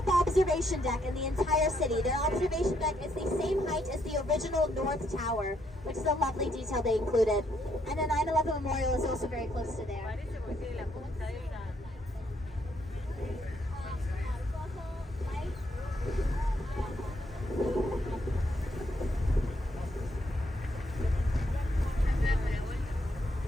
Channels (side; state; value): both; normal; correlation 0.74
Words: observation deck in the entire city. Their observation deck is the same height as the original North Tower, which is a lovely detail they included. And the 9/11 Memorial is also very close to there. Parece porque tiene la punta de una.